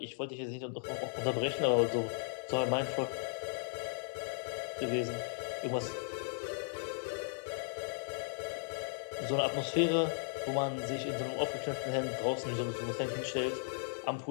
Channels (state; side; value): silent; right; digital silence